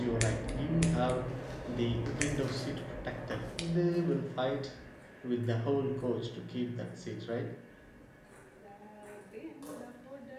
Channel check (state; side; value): identical; both; correlation 1.00